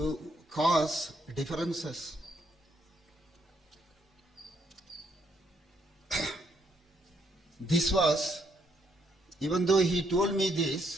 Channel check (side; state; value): both; normal; correlation 0.73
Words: cause differences. This was, even though he told me